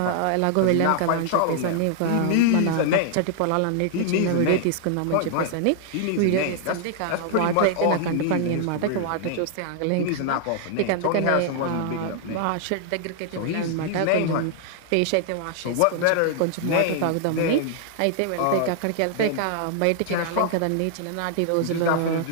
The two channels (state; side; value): different; both; correlation 0.00